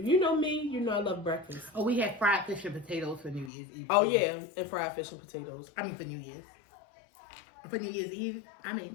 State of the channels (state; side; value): drops out; right; at 3.5 s